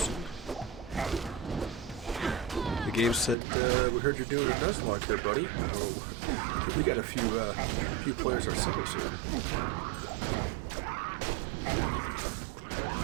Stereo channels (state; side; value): drops out; left; at 3.4 s